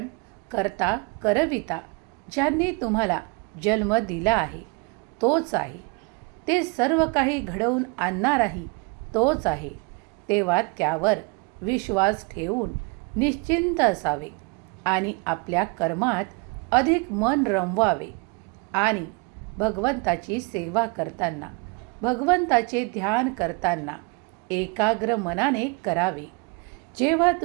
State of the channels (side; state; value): left; quieter; 30.0 dB